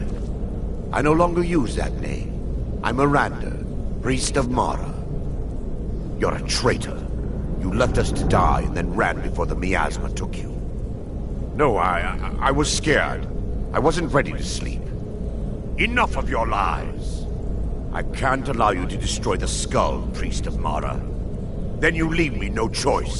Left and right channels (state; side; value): identical; both; correlation 1.00